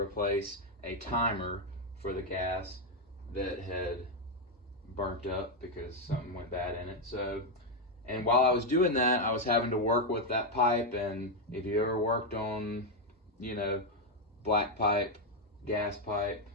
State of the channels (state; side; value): normal; both; correlation 0.03